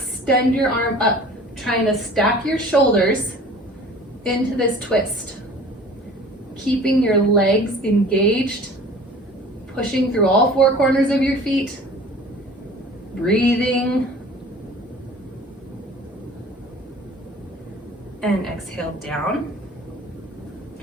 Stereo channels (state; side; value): normal; both; correlation 0.45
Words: your arm up, trying to stack your shoulders into this twist. Keeping your legs engaged, pushing through all four corners of your feet, breathing, and exhale down.